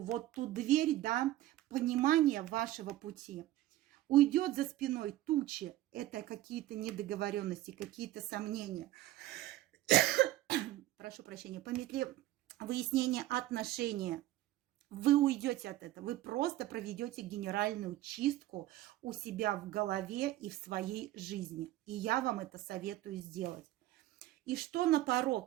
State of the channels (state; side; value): quieter; left; 15.3 dB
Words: вот ту дверь, да, понимания вашего пути. Уйдет за спиной тучи, это какие-то недоговоренности, какие-то сомнения. Прошу прощения, по метле выяснения отношения. Вы уйдете от этого, вы просто проведете генеральную чистку у себя в голове и в своей жизни. И я вам это советую сделать. И что на